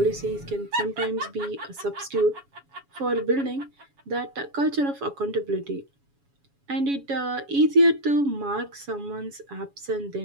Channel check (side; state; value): left; late; 7.1 ms